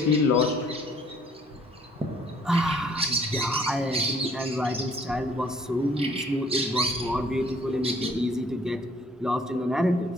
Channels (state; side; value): normal; both; correlation 0.59